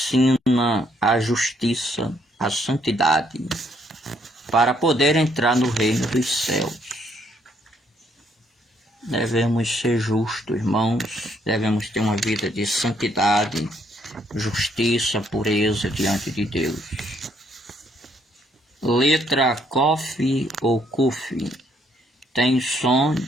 a justiça, a santidade, para poder entrar no reino dos céus. Devemos ser justos, irmãos, devemos ter uma vida de santidade, justiça, pureza diante de Deus. Letra Kof ou Kuf tem som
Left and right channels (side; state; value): both; normal; correlation 0.70